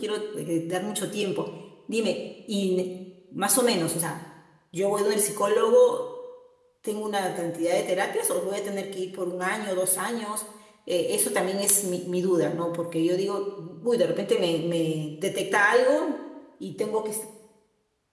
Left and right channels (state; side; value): identical; both; correlation 1.00